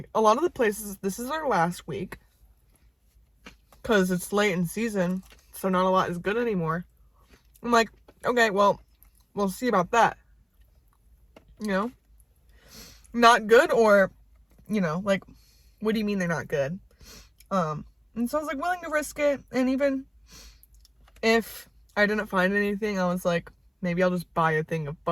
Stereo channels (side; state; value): both; identical; correlation 1.00